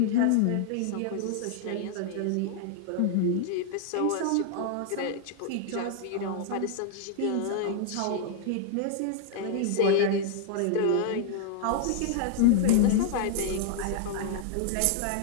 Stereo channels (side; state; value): both; different; correlation 0.00